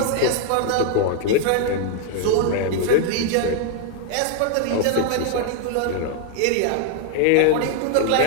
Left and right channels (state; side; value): different; both; correlation 0.00